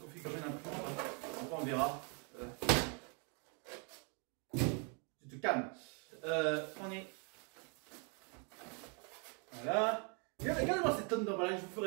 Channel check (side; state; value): left; quieter; 36.7 dB